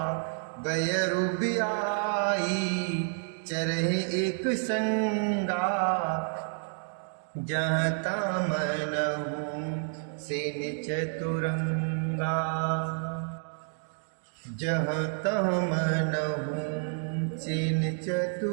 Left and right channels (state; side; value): silent; left; 55 dB below the other